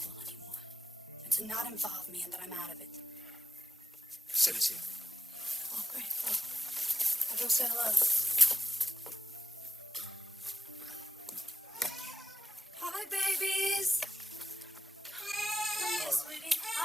anymore. And to not involve me and that I'm out of it. Sit us here. Oh, great. Well, I'll go say hello. Hi, babies. Come here, sweetie.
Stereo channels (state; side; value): normal; both; correlation 0.89